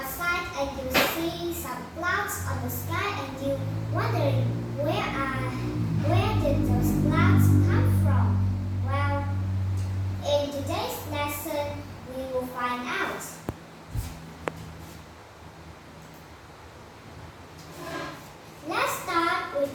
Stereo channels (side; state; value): both; identical; correlation 1.00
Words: and you see some clouds on the sky and you wondering where did those clouds come from? Well, in today's lesson, we will find out. Let's start with